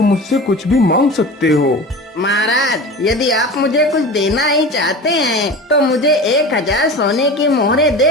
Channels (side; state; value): both; normal; correlation 0.33